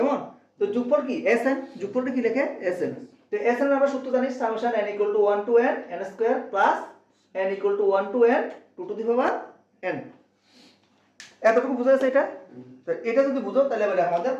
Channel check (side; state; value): both; identical; correlation 1.00